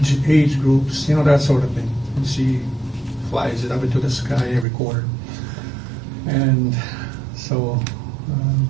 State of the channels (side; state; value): left; drops out; at 4.7 s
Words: groups, that sort of thing. And she flies it up into the sky every quarter. And so